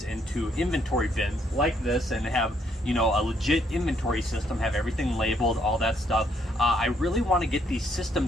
into inventory bins like this, and have, you know, a legit inventory system, have everything labeled, all that stuff. I really want to get these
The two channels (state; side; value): normal; both; correlation 0.71